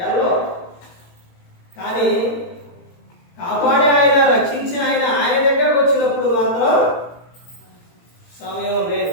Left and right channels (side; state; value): right; late; 17 ms